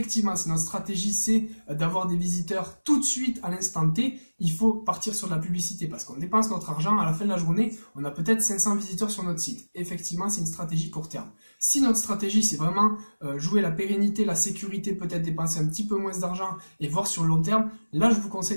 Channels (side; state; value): both; inverted; correlation -1.00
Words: si notre stratégie c'est d'avoir des visiteurs tout de suite à l'instant T, il faut partir sur de la publicité parce qu'on dépense notre argent, à la fin de la journée, on a peut-être 500 visiteurs sur notre site. Effectivement, c'est une stratégie court terme. Si notre stratégie c'est vraiment jouer la pérennité, la sécurité, peut-être dépenser un petit peu moins d'argent et voir sur le long terme, là je vous conseille